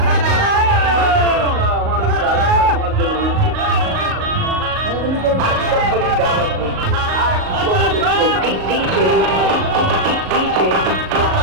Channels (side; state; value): left; late; 38 ms